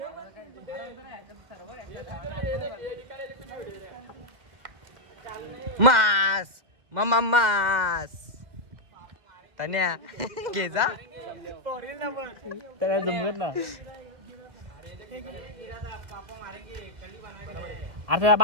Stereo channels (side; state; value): left; late; 2.1 ms